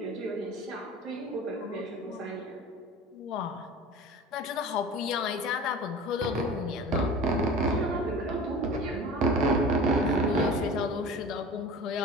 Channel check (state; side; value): normal; both; correlation 0.38